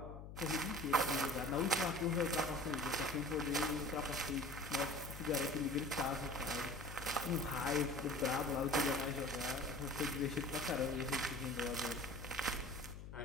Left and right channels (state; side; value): noise; left; hum, 11 dB below the sound